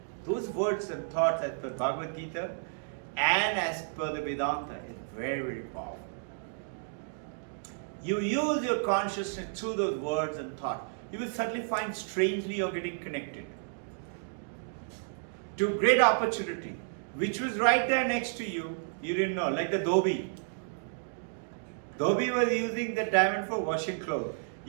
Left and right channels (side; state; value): left; silent; digital silence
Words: Those words and thoughts as per Bhagavad Gita and as per the Vedanta is very, very powerful. You use your consciousness through those words and thoughts. You will suddenly find strangely you're getting connected to great opportunity, which was right there next to you. You didn't know, like the Dhobi. Dhobi was using the diamond for washing clothes.